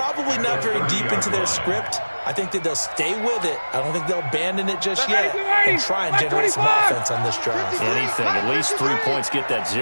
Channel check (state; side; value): inverted; both; correlation -1.00